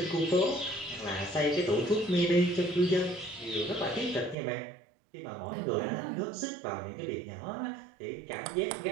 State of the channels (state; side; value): drops out; left; at 4.4 s